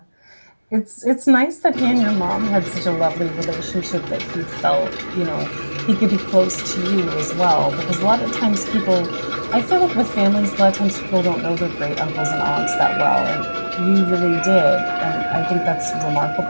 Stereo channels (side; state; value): both; inverted; correlation -1.00